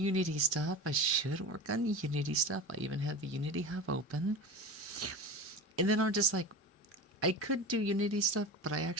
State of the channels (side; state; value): both; normal; correlation 0.30